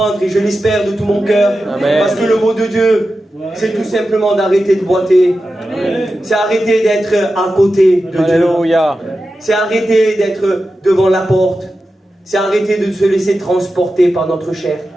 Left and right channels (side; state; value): both; normal; correlation 0.92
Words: et je l'espère de tout mon cœur. Parce que le mot de Dieu, c'est tout simplement d'arrêter de boiter. C'est arrêter d'être à côté de Alléluia. Dieu. C'est arrêter d'être devant la porte. C'est arrêter de se laisser transporter par notre chair.